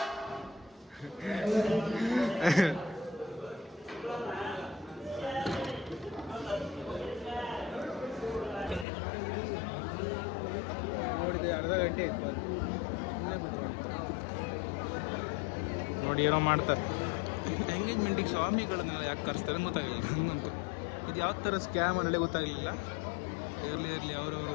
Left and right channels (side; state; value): right; drops out; at 8.8 s